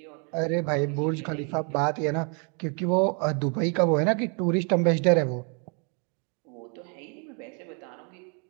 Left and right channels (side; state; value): left; quieter; 37.5 dB